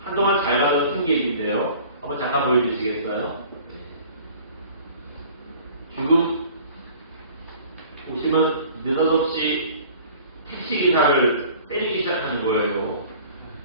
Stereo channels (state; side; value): inverted; both; correlation -0.48